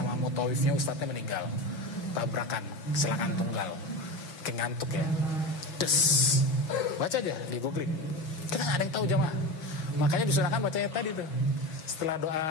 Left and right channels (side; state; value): right; late; 6.2 ms